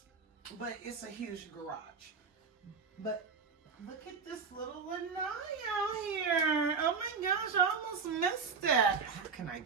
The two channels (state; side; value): quieter; left; 5.4 dB